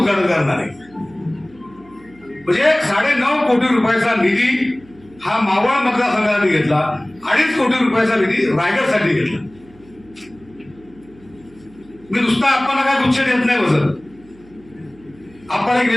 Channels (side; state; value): right; noise; hum, 26 dB below the sound